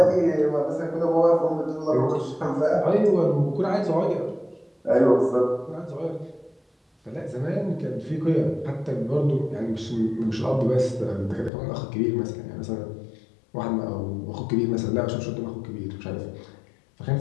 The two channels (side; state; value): right; drops out; at 11.5 s